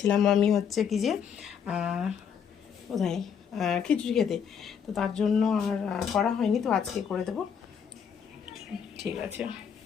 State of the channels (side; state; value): right; quieter; 7.5 dB